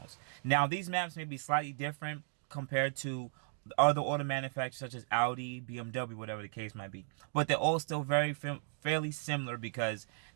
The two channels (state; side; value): silent; left; digital silence